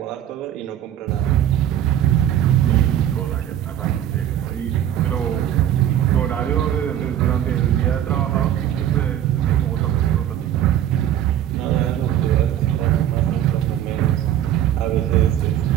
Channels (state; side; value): quieter; left; 11.1 dB